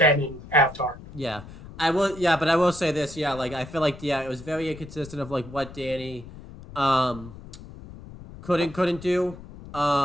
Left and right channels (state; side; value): noise; left; rumble, 16 dB below the sound